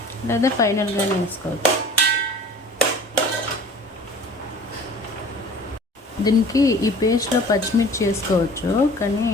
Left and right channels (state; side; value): normal; both; correlation 0.45